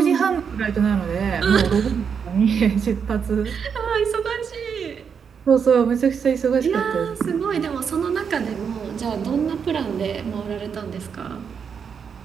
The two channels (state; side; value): quieter; left; 6.8 dB